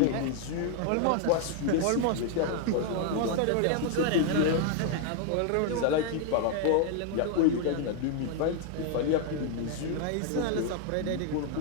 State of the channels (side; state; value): both; different; correlation 0.00